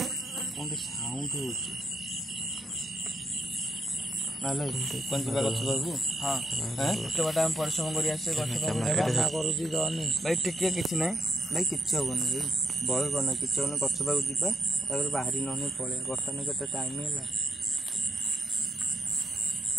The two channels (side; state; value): both; normal; correlation 0.82